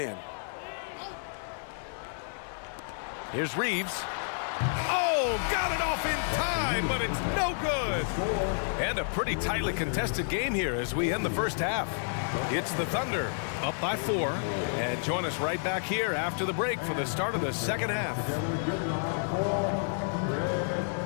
Here's Reeves. Oh, got it off in time. line, but it's no good. And a pretty tightly contested game here as we end the first half. It's the Thunder up by 4. And join us right back here after the break for the start of the second half.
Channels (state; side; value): silent; right; digital silence